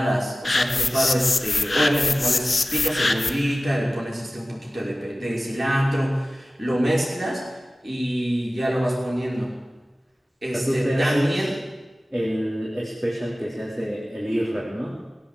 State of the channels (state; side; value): normal; both; correlation 0.96